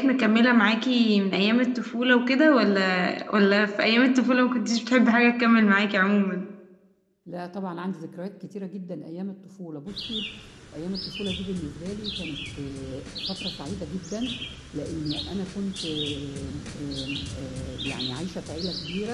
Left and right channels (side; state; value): both; identical; correlation 1.00